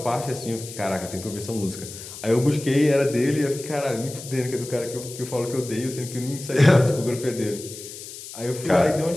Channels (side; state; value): left; noise; hiss, 13 dB below the sound